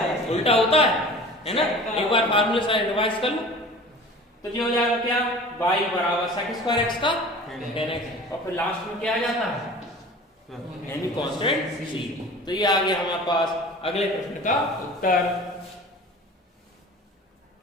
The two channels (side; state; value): both; normal; correlation 0.41